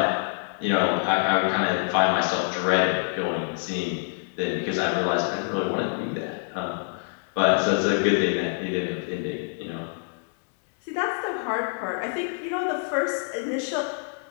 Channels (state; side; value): silent; right; 61 dB below the other